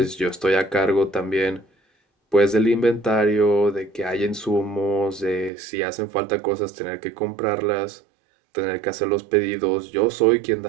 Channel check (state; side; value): drops out; left; at 5.5 s